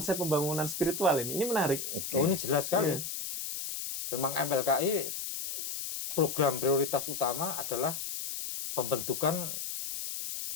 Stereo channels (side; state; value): left; noise; hiss, 5 dB below the sound